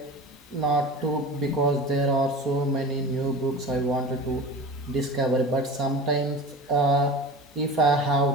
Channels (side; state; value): both; normal; correlation 0.34